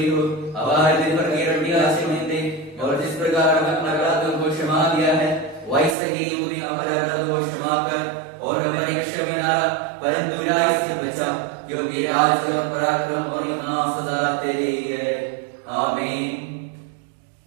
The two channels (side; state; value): left; drops out; at 6.0 s